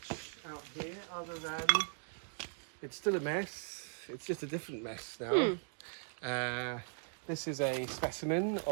out here other than it's still a mess. It's just a different mess now. This is a specimen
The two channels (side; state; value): left; silent; 52 dB below the other